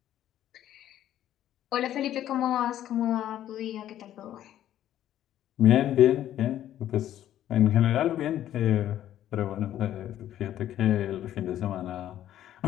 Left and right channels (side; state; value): right; quieter; 12.0 dB